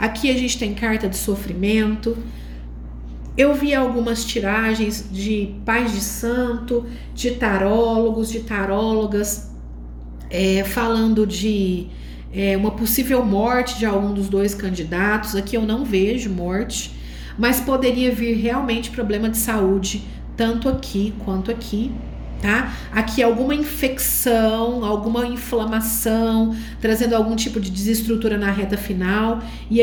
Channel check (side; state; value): both; identical; correlation 1.00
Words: a gente tem carta de sofrimento. Eu vi algumas tiragens de pais de santo, de tarólogos, de tarólogas, falando de uma possível morte de algum dos dois candidatos. Aqui eu não vejo morte, mas poderia vir realmente problema de saúde, tanto aqui quanto aqui, tá? Aqui alguma infecção, alguma inflamação, trazendo algum tipo de desestrutura na reta final. E